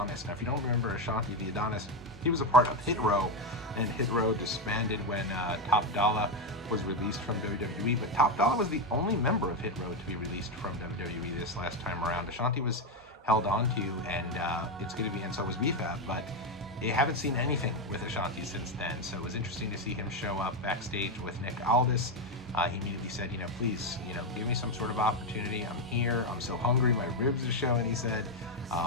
Now, if you don't remember Ashanti the Adonis, he was a part of Hit Row, and Hit Row disbanded when Top Dollar was released from WWE, but Top Dollar was the only member of Hit Row to be released from WWE this last time around. Ashanti was held on to, and it's going to be, and so was BFAB, but I haven't seen anything with Ashanti since then, so it was interesting to see him show up backstage with Nick Aldis. He immediately said, please, give me some sort of opportunity. I'm here. I'm so hungry. My ribs are showing, he said.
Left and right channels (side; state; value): both; normal; correlation 0.07